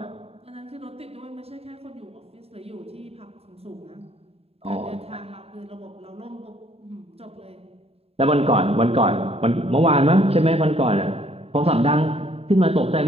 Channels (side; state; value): left; late; 0.29 ms